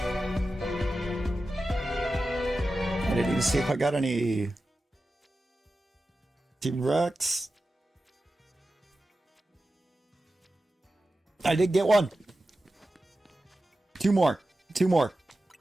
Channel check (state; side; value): normal; both; correlation 0.93